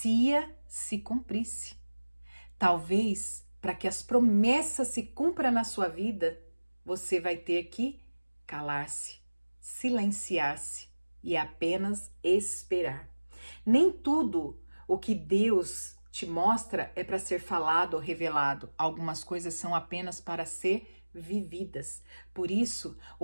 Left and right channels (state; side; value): inverted; both; correlation -1.00